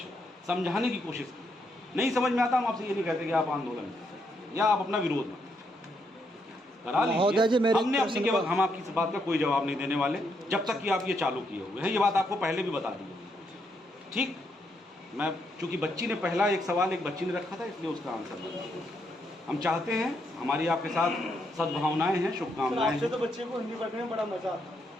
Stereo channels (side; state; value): both; normal; correlation 0.77